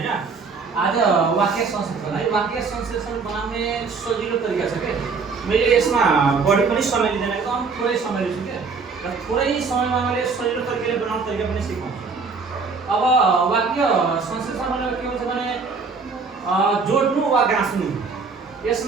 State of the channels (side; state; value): left; quieter; 4.8 dB